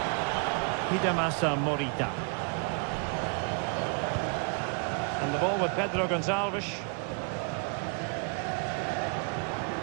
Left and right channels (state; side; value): quieter; left; 39.7 dB